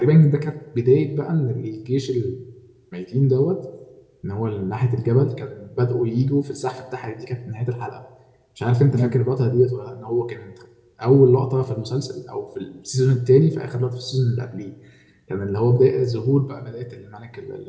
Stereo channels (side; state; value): both; identical; correlation 1.00